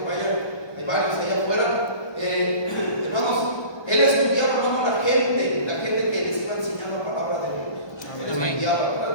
vayan, hay varios allá afuera. Hermanos, él estudiaba, hermano, la gente que les iba a enseñar la palabra de Dios. Él estudiaba,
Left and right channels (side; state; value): right; late; 1.2 ms